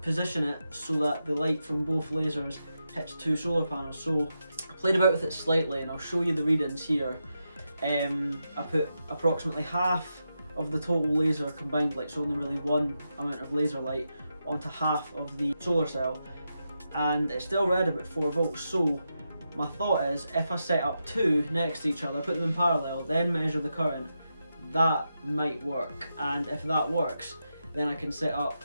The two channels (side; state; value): both; inverted; correlation -0.87